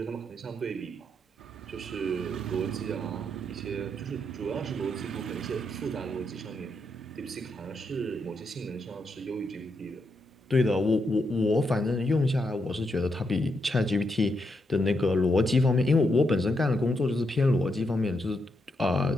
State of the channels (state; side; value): normal; both; correlation 0.81